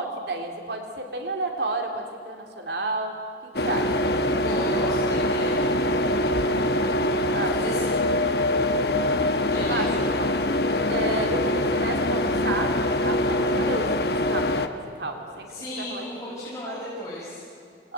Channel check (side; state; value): both; normal; correlation 0.09